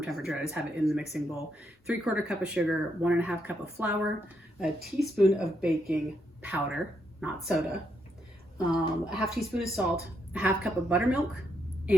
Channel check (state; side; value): normal; both; correlation 0.78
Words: I just have it in the mixing bowl. 3/4 cup of sugar, 1.5 cup of flour, a teaspoon of baking powder, not soda, a 1/2 teaspoon of salt, a 1/2 cup of buttermilk,